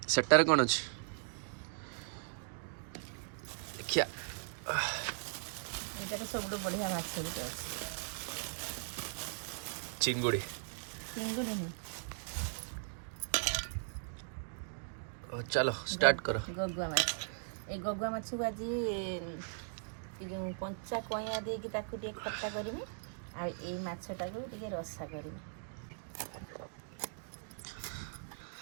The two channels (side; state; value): left; silent; digital silence